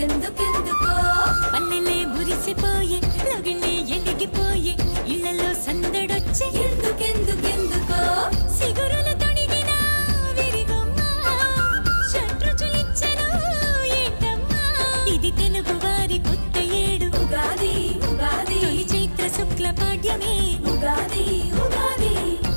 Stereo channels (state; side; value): inverted; both; correlation -1.00